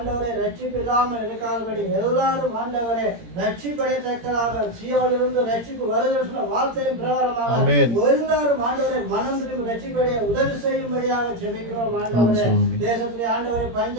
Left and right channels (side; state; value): left; late; 17 ms